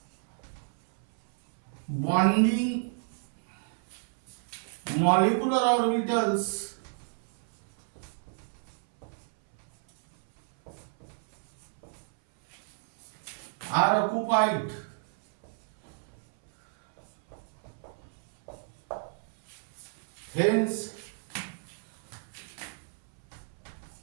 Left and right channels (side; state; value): left; silent; 57 dB below the other